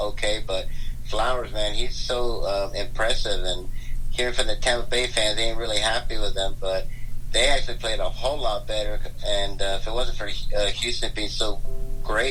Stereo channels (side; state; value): both; identical; correlation 1.00